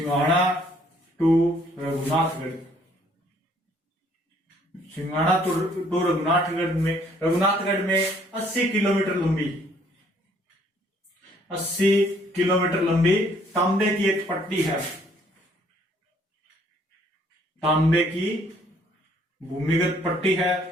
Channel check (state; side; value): normal; both; correlation 0.63